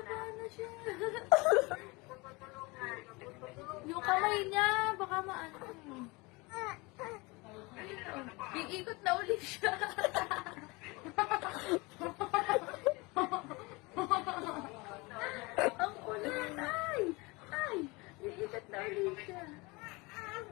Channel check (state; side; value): quieter; right; 25.3 dB